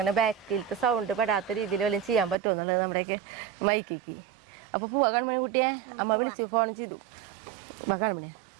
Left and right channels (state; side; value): drops out; left; at 2.4 s